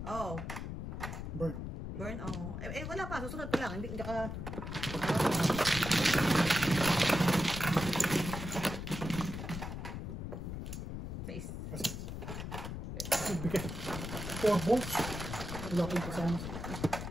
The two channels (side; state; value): left; noise; rumble, 6 dB below the sound